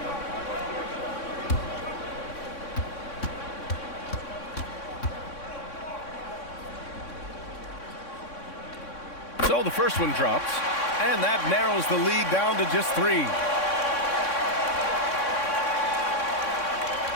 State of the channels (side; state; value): right; late; 3.6 ms